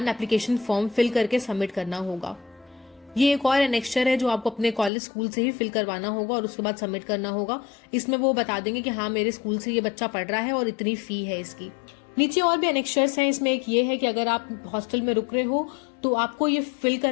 application form fill करके सबमिट करना होगा। ये एक और एनेक्स्चर है जो आपको अपने कॉलेज स्कूल से ही फिल करवाना होगा और उसके बाद सबमिट करना होगा। इसमें वो बता देंगे कि हाँ मेरे स्कूल से ये बच्चा पढ़ रहा है और इतनी फी है इसकी। नीचे और भी एनेक्स्चर्स हैं, इसमें एक ये है कि अगर आप हॉस्टल में रुक रहे हो तो आपको ये फिल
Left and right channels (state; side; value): drops out; right; at 4.9 s